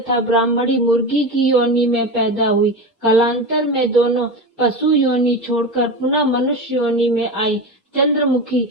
ब्राह्मणी मुर्गी की योनि में पैदा हुई। कालांतर में दोनों पशु योनि छोड़कर पुनः मनुष्य योनि में आई। चंद्रमुखी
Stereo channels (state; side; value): normal; both; correlation 0.23